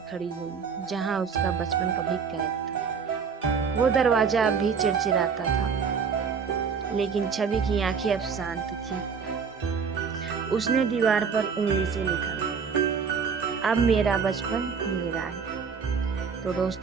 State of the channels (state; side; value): quieter; left; 6.0 dB